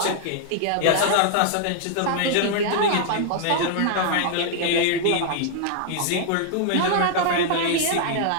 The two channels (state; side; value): different; both; correlation -0.01